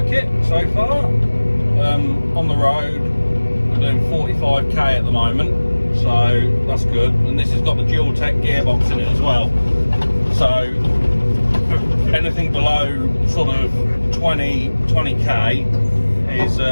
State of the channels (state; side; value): inverted; both; correlation -1.00